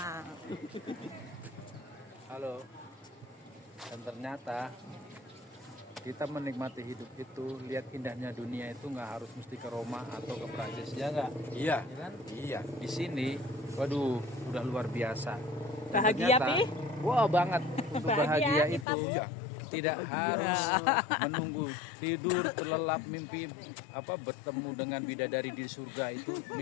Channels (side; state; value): right; drops out; at 18.9 s